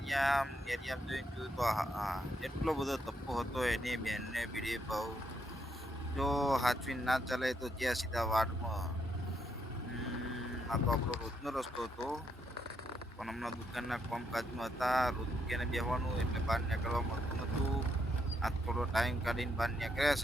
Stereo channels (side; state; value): both; normal; correlation 0.77